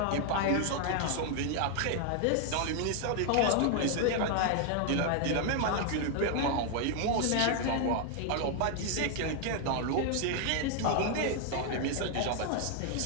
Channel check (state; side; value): different; both; correlation 0.00